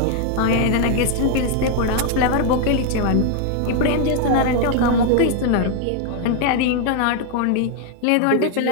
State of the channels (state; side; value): different; both; correlation 0.00